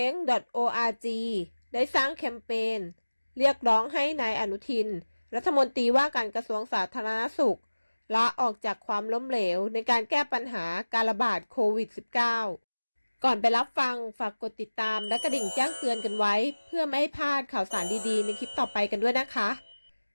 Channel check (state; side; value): inverted; both; correlation -1.00